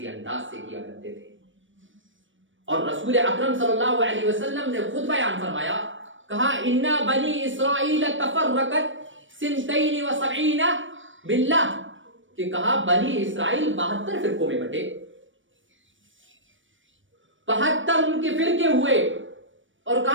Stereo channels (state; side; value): late; left; 0.56 ms